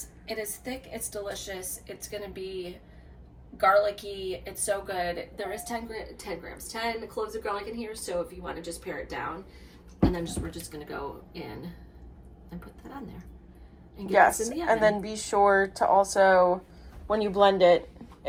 It is thick. It's delicious. It's gonna be garlicky. It's so good. There is 10 cloves of garlic in here, so if you want to just pare it down, and then we're just gonna go in and put that on there. And get this in the oven. And then be sure to also, when you blend it,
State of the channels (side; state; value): both; identical; correlation 1.00